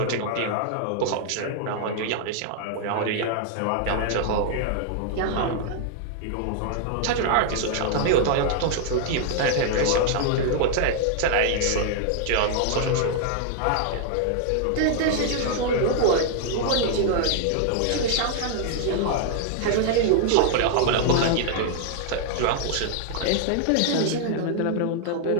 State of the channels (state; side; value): different; both; correlation 0.00